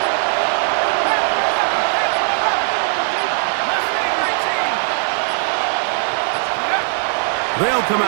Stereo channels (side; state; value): left; silent; digital silence